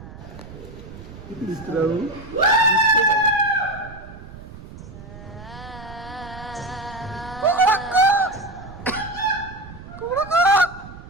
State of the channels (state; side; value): noise; right; rumble, 15 dB below the sound